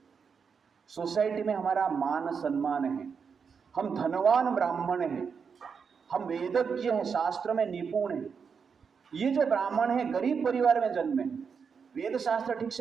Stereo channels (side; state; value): left; quieter; 6.1 dB